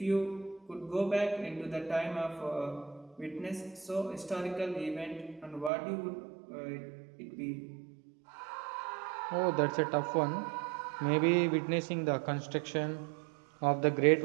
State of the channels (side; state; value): left; drops out; at 5.7 s